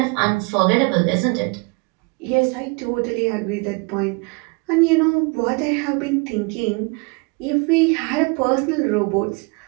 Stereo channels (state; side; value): quieter; left; 30.5 dB